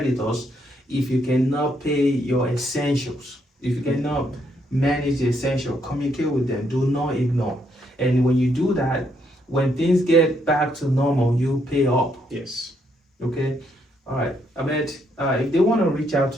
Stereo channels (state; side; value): normal; both; correlation 0.74